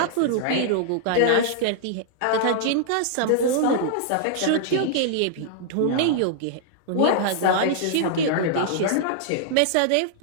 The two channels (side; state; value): both; different; correlation -0.01